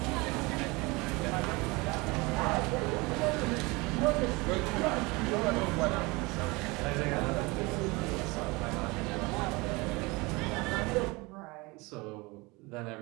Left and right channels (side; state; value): left; quieter; 24.9 dB